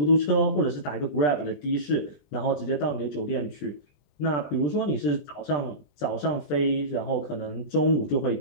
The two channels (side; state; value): right; late; 20 ms